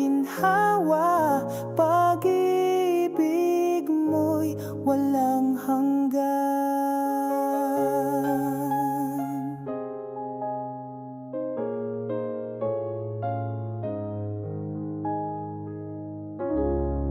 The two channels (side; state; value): both; identical; correlation 1.00